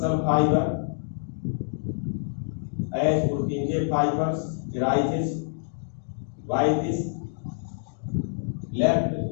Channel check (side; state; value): right; silent; digital silence